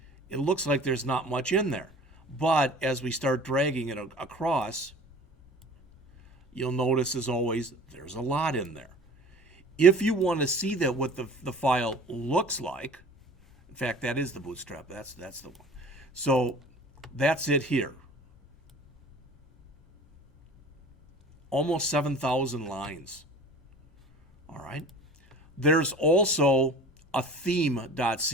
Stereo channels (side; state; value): both; normal; correlation 0.43